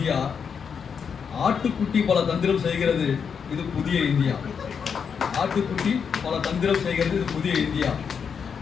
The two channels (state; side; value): quieter; right; 6.6 dB